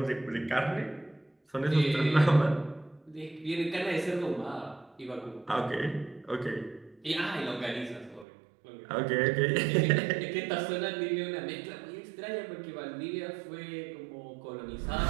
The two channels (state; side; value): drops out; left; at 8.2 s